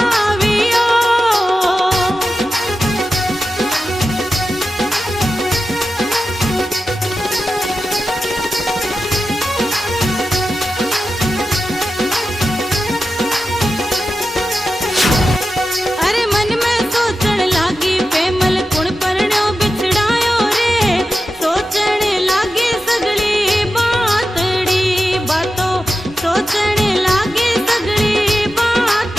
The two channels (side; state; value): both; normal; correlation 0.92